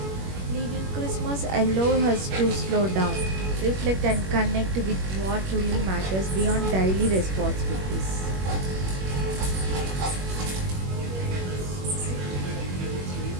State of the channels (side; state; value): left; late; 21 ms